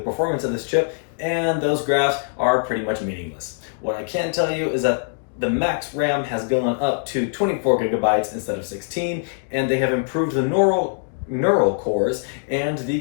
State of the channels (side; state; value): right; silent; digital silence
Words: of this chip, and those graphs are pretty much meaningless. What I can tell you is that the max RAM has gone up to 24 gigabytes instead of 16, and they have improved the neural cores and